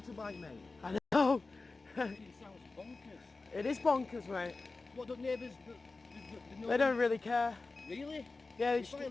mate. I know. It sounds bonkers. It is bonkers, mate. What do neighbours... They don't really care. Really? Yeah, If I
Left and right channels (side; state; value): right; quieter; 3.7 dB